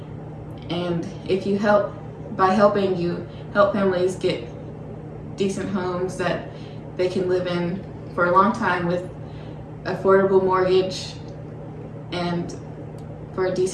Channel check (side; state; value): both; identical; correlation 1.00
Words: And if you help, by helping, you help families get decent homes that they can live in for a long time with affordable mortgage and for a